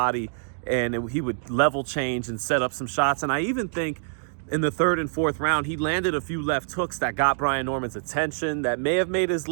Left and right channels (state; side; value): silent; left; digital silence